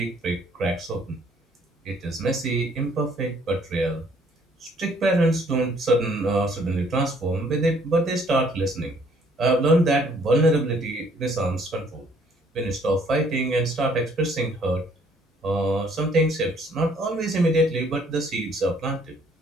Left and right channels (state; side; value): normal; both; correlation 0.62